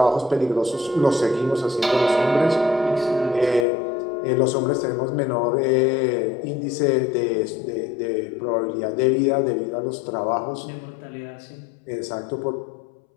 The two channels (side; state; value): right; drops out; at 3.7 s